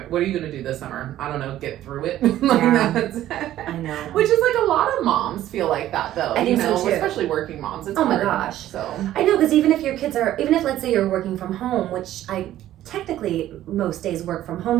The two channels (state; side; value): quieter; left; 13.2 dB